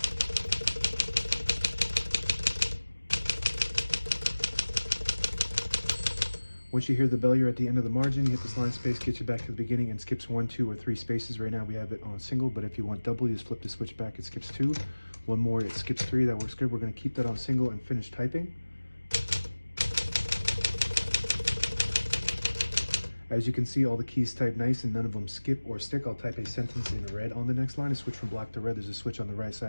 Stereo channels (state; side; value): inverted; both; correlation -1.00